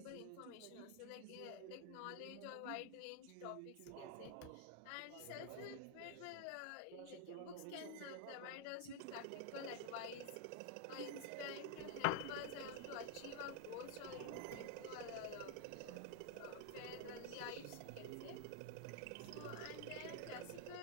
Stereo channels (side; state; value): both; different; correlation 0.00